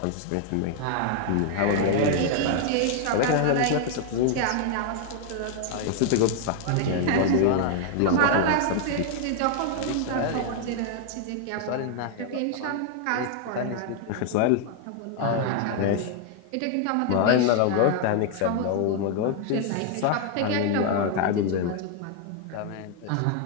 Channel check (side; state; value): both; different; correlation 0.00